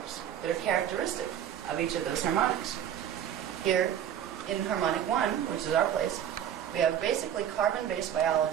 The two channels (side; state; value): left; quieter; 9.9 dB